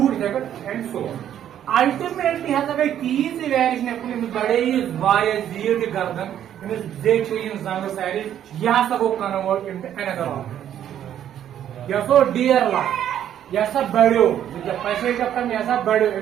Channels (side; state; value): left; quieter; 10.5 dB